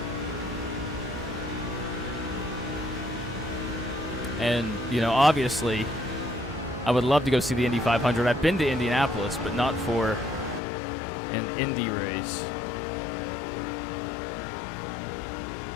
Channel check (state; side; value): drops out; right; at 10.6 s